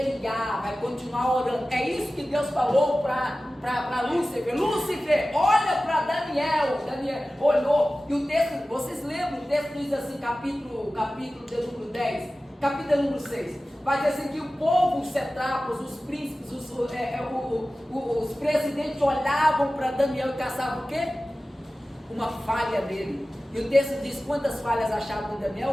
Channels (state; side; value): normal; both; correlation 0.96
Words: vai continuar orando. É isso que Deus falou para Lúcifer. Lúcifer, olha para Daniel. Daniel olhou, e o texto, vocês lembram? O texto diz assim, capítulo de número 10, capítulo número 6. Vai dizer assim que o povo, os satrapas, os príncipes, os presidentes olhavam para Daniel e caçavam o quê? Uma falha nele. E o texto diz: quantas falhas achavam em